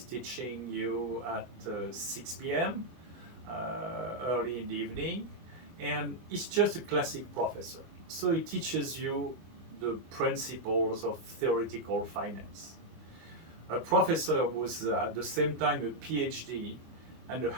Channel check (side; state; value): left; late; 24 ms